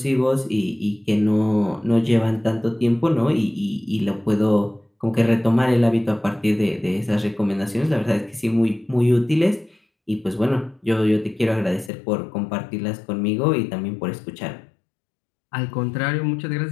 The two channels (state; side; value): drops out; right; at 11.9 s